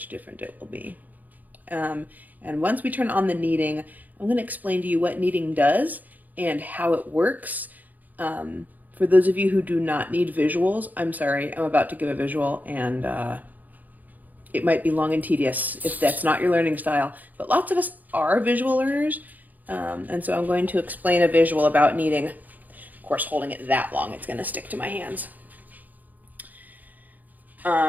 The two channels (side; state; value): left; late; 0.082 ms